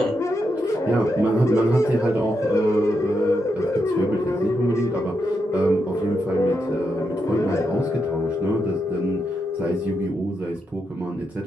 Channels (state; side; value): normal; both; correlation 0.84